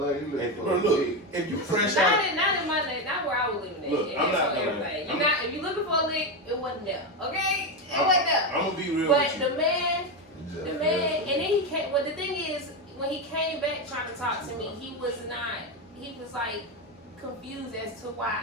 LA, he And, looking bro, for a look, dick. if you fresh Not out, in my name, not where I was living at. Look, It I'm is not for gonna- everybody. I'm- If you're looking for a lick, it wasn't there. Okay? It wasn't there. I'm gonna be real But with you. the man, and then he came, well the thing is, when he came back trying to talk to me, he was like confused as to why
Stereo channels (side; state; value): both; normal; correlation 0.12